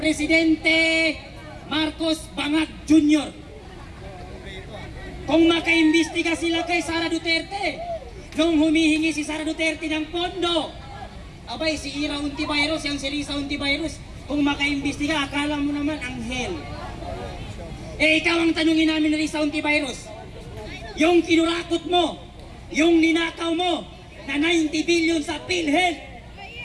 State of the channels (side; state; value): both; identical; correlation 1.00